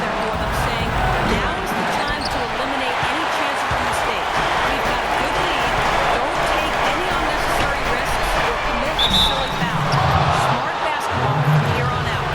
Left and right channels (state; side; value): identical; both; correlation 1.00